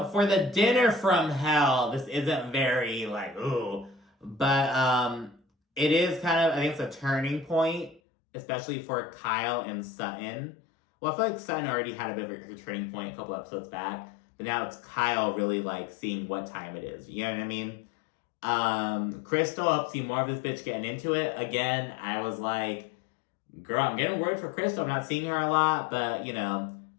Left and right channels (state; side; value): drops out; right; at 8.0 s